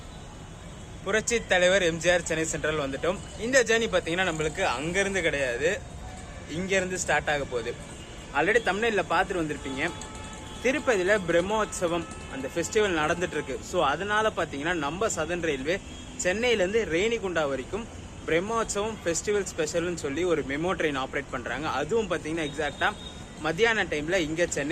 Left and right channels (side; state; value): both; identical; correlation 1.00